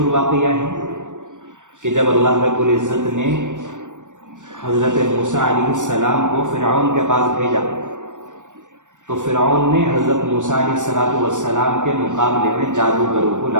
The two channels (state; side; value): late; left; 0.86 ms